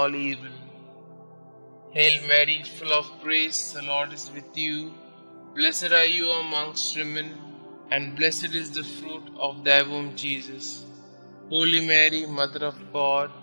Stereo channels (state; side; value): inverted; both; correlation -1.00